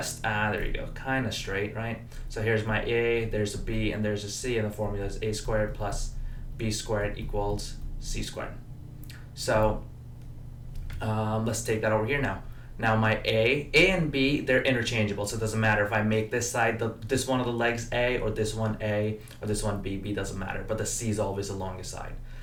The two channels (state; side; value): identical; both; correlation 1.00